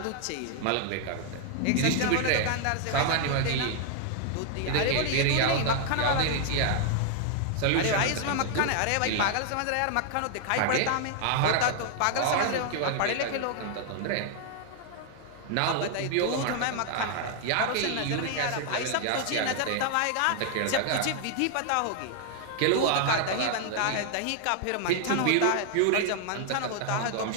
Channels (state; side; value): different; both; correlation 0.00